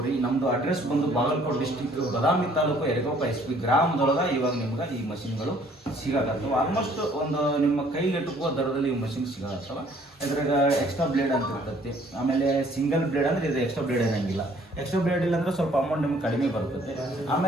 ನಮ್ಮದು ಅಡ್ರೆಸ್ ಬಂದು ಬಾಗಲಕೋಟೆ ಡಿಸ್ಟಿಕ್ ಬದಾಮಿ ತಾಲೂಕು ಯರಗೋಪ SP ಗ್ರಾಮದೊಳಗೆ ಇವಾಗ ನಿಮ್ಗೆ ಈ ಮಷಿನ್ಗಳು ಸಿಗಾಕತ್ತವೆ. ಆಲ್ಮೋಸ್ಟ್ ಒಂದು ನಿಮ್ಮ ಕೈಗೆಟುಕುವ ದರದಲ್ಲಿ ಈ ಮಷಿನ್ ಸಿಗಾಕತ್ತವೆ. ಇದ್ರಾಗ ಎಕ್ಸ್ಟ್ರಾ ಬ್ಲೇಡ್ ಅಂತ ಇರ್ತೈತಿ. ಆಮೇಲೆ ಸಿಂಗಲ್ ಬ್ಲೇಡ್ ಅಂದರೆ ಇದು ಎಕ್ಸ್ಟ್ರಾ ಬ್ಲೇಡ್ ಏನಂಗಿಲ್ಲ. ಎಕ್ಸ್ಟ್ರಾ ಬ್ಲೇಡ್ ಇಲ್ಲ ಅಂದರೆ ಸ್ವಲ್ಪ ಅಮೌಂಟ್ ನಿಮ್ಗೆ ಕಡಿಮೆ ಬರ್ತೈತೆ.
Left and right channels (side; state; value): both; normal; correlation 0.59